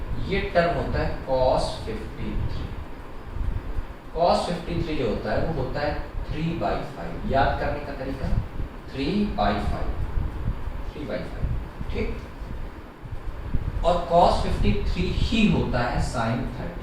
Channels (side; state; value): both; identical; correlation 1.00